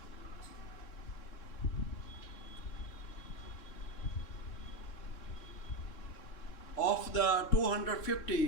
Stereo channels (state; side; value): late; right; 3.6 ms